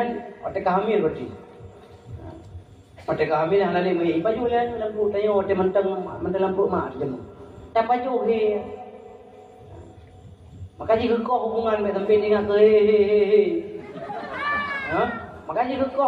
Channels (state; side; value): identical; both; correlation 1.00